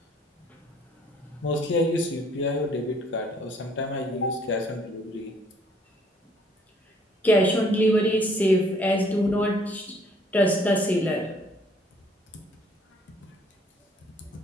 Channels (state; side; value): normal; both; correlation 0.61